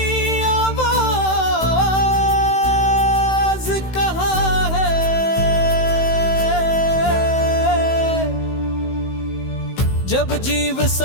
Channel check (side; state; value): right; late; 16 ms